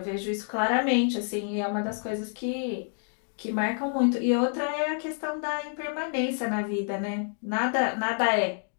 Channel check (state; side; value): silent; right; 59 dB below the other